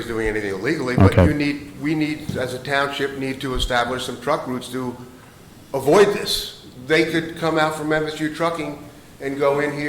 doing anything illegally, but Okay. we need, as a township, need to establish some truck routes to avoid this. They could come out from MSU Trucking and go in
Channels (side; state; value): both; identical; correlation 1.00